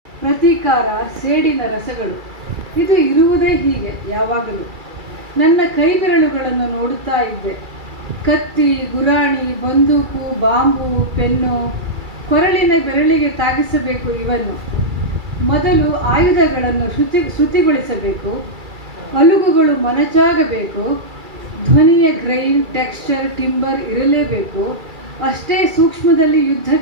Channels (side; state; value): left; late; 2.3 ms